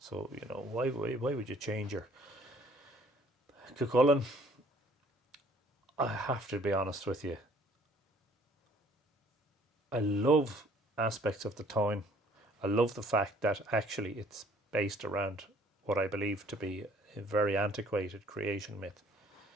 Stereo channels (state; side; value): normal; both; correlation 0.58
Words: why would you change your... Cuchulainn, I have to be honest with you, I love aspects of the town. I love the fact that actually it's based around what I believe to be a very antiquated creation myth,